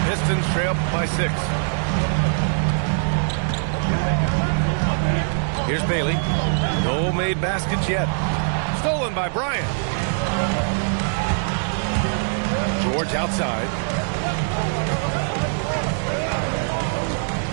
Pistons trail by 6. Here's Bailey. No made baskets yet. Stolen by Bryant. George outside.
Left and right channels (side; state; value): left; silent; digital silence